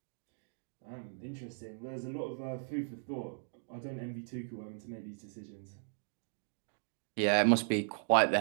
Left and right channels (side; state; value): left; silent; digital silence